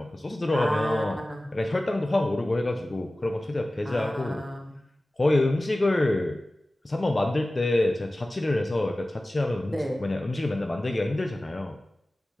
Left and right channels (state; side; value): normal; both; correlation 0.97